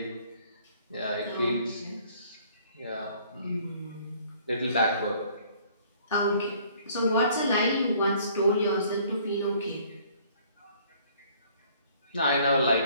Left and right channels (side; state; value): both; inverted; correlation -0.58